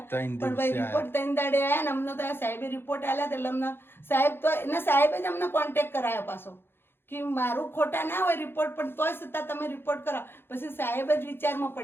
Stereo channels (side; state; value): right; late; 0.11 ms